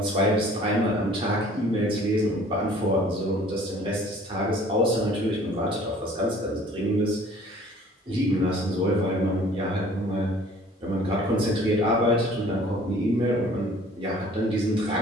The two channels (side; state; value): both; normal; correlation 0.52